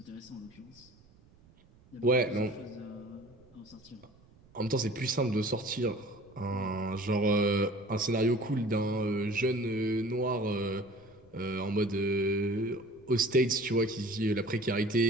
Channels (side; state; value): right; noise; rumble, 28 dB below the sound